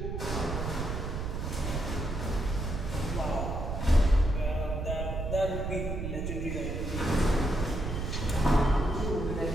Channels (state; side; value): noise; right; rumble, 4 dB below the sound